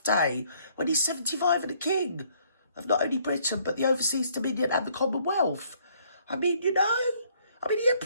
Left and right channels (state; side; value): inverted; both; correlation -0.65